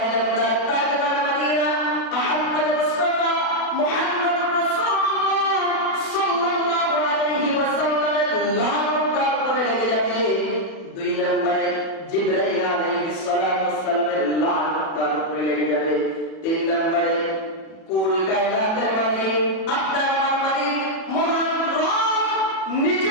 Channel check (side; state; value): right; late; 37 ms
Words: তাজমান মাদিনা আহমদ মুস্তাফা মুহাম্মদুর রাসূলুল্লাহ সাল্লাল্লাহু আলাইহি ওয়াসাল্লামের লানত তারপরে লেগে যাবে। দুই নম্বরে জিবরাইল আলাইহিস সালাতু ওয়াস সালামের লানত তারপরে লেগে যাবে। তিন নম্বরে কুল কায়নাতের মালিক আপনার আমার মালিক মহান রব